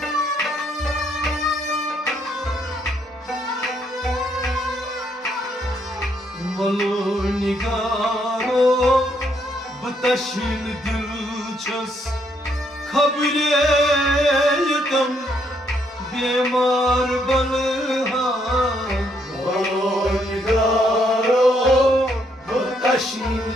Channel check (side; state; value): both; normal; correlation 0.73